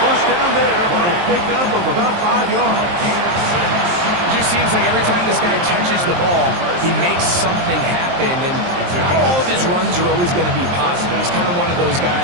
first down there on a pickup of about 5 yards. It just seems like every time this guy touches the ball, he makes something happen, and not all of his runs are always going to be positive. He's kind of one of those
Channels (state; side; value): late; left; 23 ms